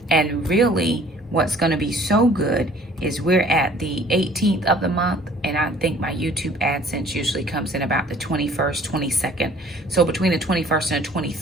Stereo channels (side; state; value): both; normal; correlation 0.53